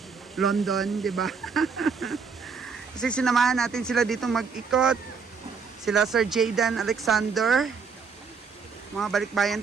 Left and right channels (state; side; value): quieter; left; 5.6 dB